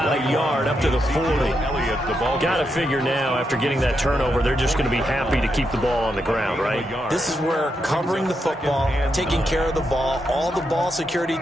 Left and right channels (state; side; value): normal; both; correlation 0.83